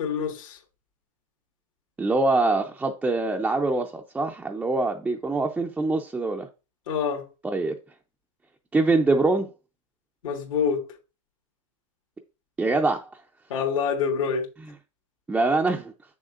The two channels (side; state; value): both; normal; correlation 0.62